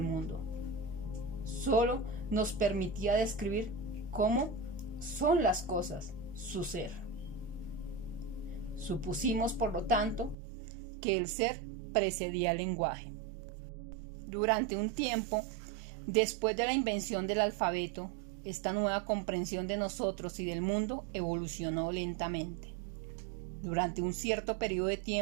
mundo. Solo nos permitía describir cómo son las cosas, su ser. Supusimos, por lo tanto, que el ser precedía al lenguaje. Durante un tiempo, después de la invención del alfabeto, esta nueva comprensión de nosotros y del mundo evolucionó lentamente. Durante un cierto periodo de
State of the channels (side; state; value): left; drops out; at 10.4 s